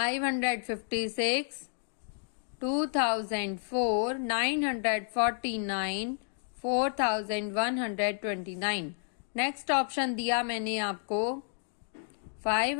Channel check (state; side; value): silent; right; digital silence